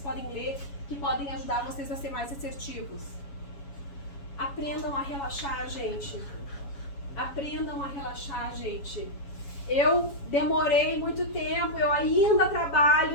podem ler que podem ajudar vocês a ser mais assertivos. Aprendam a relaxar, gente. Aprendam a relaxar, gente. Eu demorei muito tempo, eu ainda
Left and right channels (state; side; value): late; right; 7.2 ms